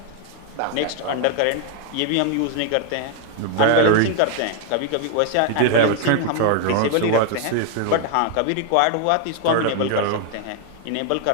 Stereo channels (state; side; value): different; both; correlation 0.00